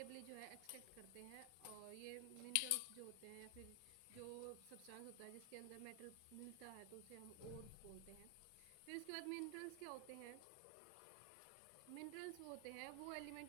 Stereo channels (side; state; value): both; different; correlation 0.00